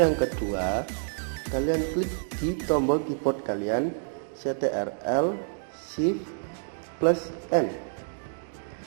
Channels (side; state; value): left; silent; digital silence